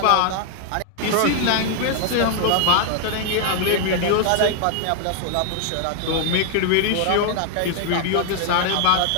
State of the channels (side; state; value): both; different; correlation 0.00